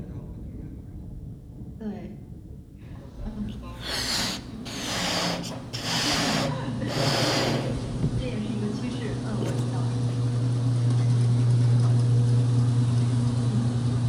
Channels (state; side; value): identical; both; correlation 1.00